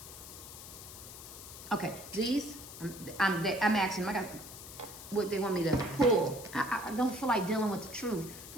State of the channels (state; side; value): noise; left; hiss, 13 dB below the sound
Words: Okay, these, I'm asking them. I got what they want me to pull. I don't feel like dealing with the truth.